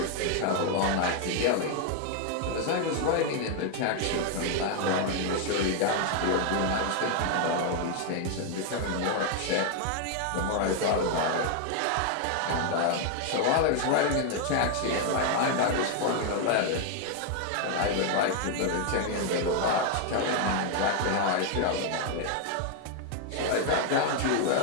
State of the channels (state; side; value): different; both; correlation 0.00